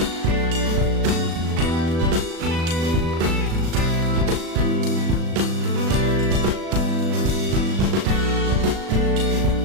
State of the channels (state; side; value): late; left; 36 ms